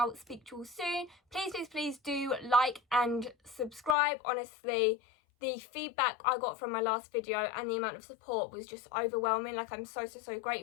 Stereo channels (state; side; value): drops out; right; at 4.0 s